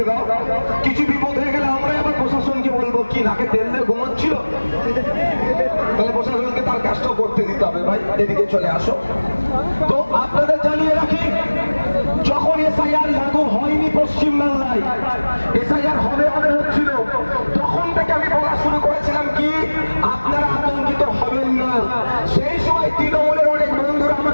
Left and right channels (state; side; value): inverted; both; correlation -1.00